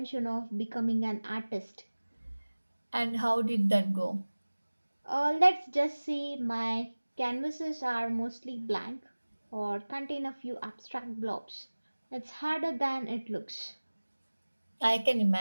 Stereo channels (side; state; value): both; inverted; correlation -1.00